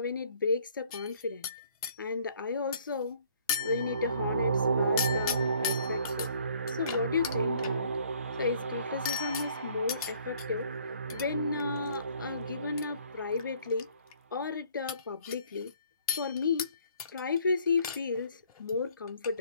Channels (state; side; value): inverted; both; correlation -0.60